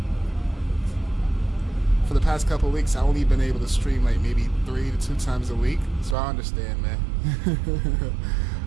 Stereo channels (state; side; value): drops out; left; at 6.2 s